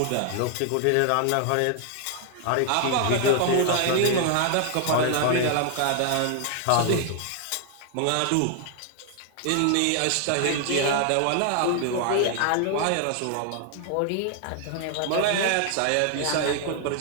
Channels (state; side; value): different; both; correlation 0.00